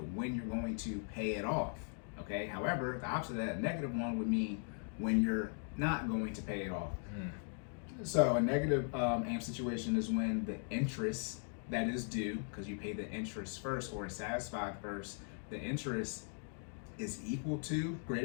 when you're going to pay it off. Okay, however, the opposite of that negative one would mean when you're not going to pay it off. So a negative am situation is when the interest that is due, because you pay the interest first or is satisfied first, the interest is equal to,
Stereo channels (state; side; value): silent; right; 52 dB below the other